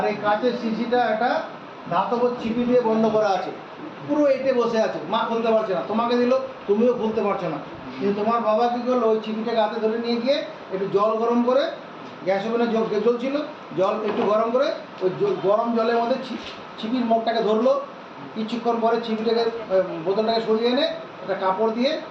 এই কাঁচের শিশিটা একটা ধাতব ছিপি দিয়ে বন্ধ করা আছে, পুরো এঁটে বসে আছে, মা খুলতে পারছে না, তোমাকে দিল তুমিও খুলতে পারছো না। কিন্তু তোমার বাবা কী করলো, ওই ছিপিটাকে হাতে ধরে নিয়ে গিয়ে একটু জল গরম করে, গ্যাস ওভেনে জল ছিল, জল একটু গরম করে ওই গরম জলের মধ্যে ছিপির মুখটাকে ধরলো, কিছুক্ষণ পরে ছিপিটাকে বোতলটাকে সরিয়ে এনে একটা কাপড় দিয়ে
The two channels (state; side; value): identical; both; correlation 1.00